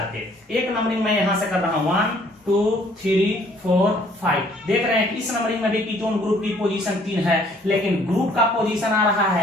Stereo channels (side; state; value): both; normal; correlation 0.60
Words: पे। एक नंबरिंग में यहां से कर रहा हूं 1 2 3 4 5। देख रहे हैं कि इस नंबरिंग में भी कीटोन ग्रुप की पोजीशन 3 है, लेकिन ग्रुप का पोजीशन आ रहा